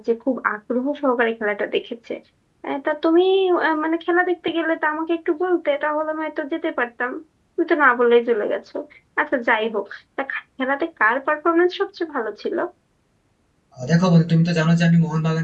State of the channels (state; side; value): identical; both; correlation 1.00